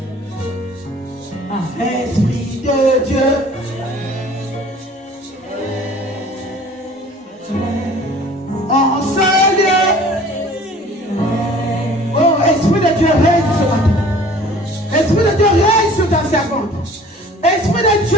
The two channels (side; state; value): both; normal; correlation 0.49